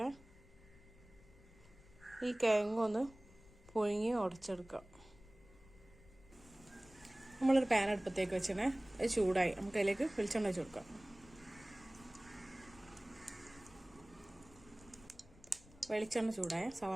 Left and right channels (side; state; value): left; noise; rumble, 23 dB below the sound